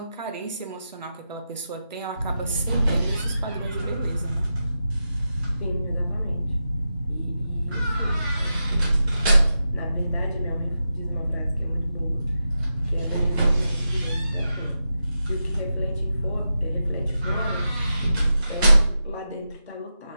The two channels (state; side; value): inverted; both; correlation -0.89